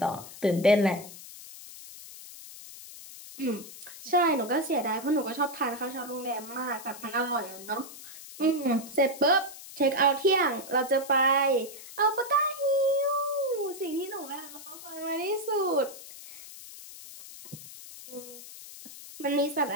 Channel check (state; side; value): noise; left; hiss, 15 dB below the sound